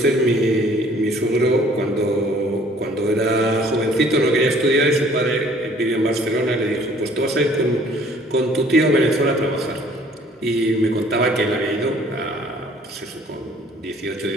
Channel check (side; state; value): both; normal; correlation 0.56